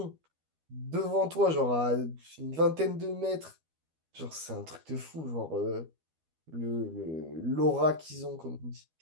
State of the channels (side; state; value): left; late; 12 ms